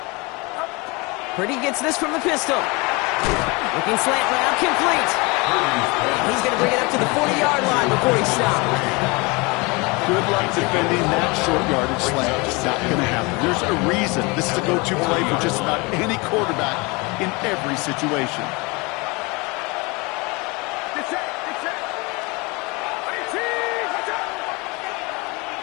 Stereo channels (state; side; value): quieter; right; 26.9 dB